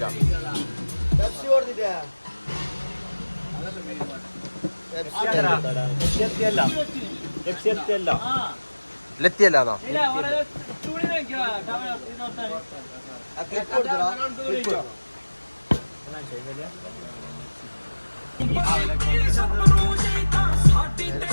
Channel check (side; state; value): both; inverted; correlation -1.00